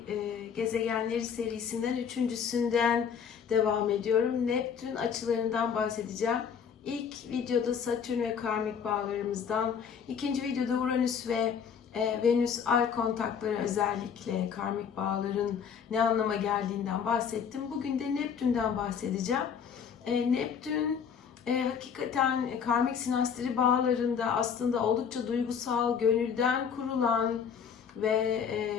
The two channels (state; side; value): quieter; right; 7.2 dB